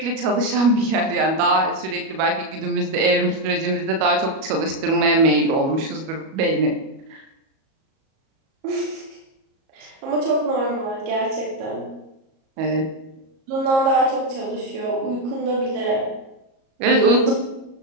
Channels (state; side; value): late; left; 37 ms